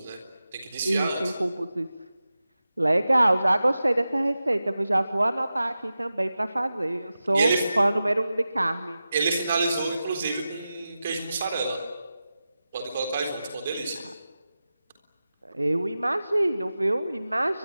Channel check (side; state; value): both; inverted; correlation -0.93